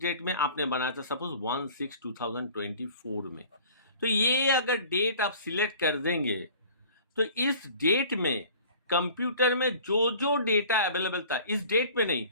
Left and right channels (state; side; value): inverted; both; correlation -0.47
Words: डेट में, आपने बनाया था सपोज 1/6/2024 में। तो ये अगर डेट आप सिलेक्ट कर देंगे तो इस डेट में कंप्यूटर में जो जो डेटा अवेलेबल था, इस डेट में नहीं,